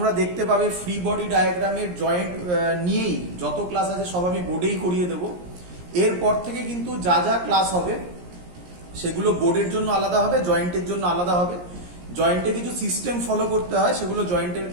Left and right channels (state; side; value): late; left; 17 ms